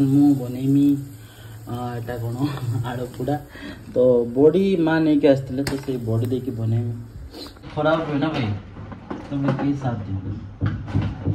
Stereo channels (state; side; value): identical; both; correlation 1.00